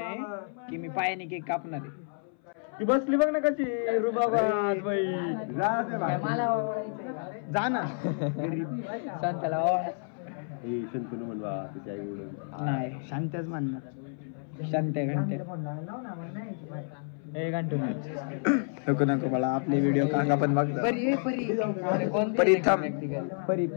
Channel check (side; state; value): right; silent; 58 dB below the other